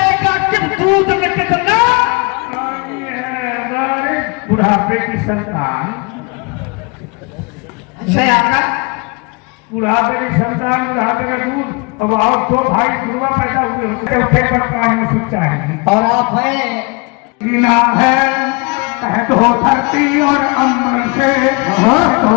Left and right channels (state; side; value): quieter; right; 29.8 dB